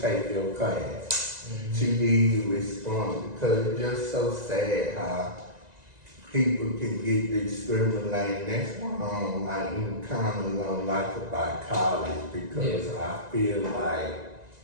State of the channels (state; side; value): late; left; 1.9 ms